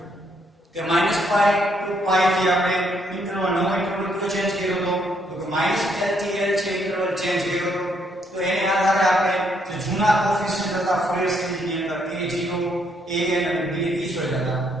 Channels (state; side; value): normal; both; correlation 0.72